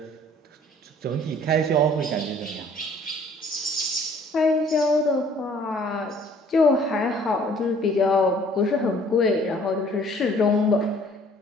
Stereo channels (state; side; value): normal; both; correlation 0.56